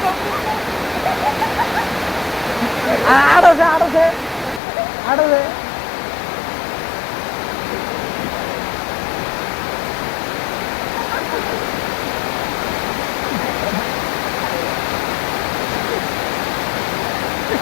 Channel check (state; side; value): drops out; right; at 4.6 s